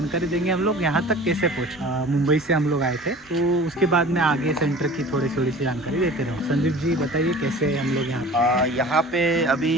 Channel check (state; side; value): normal; both; correlation 0.42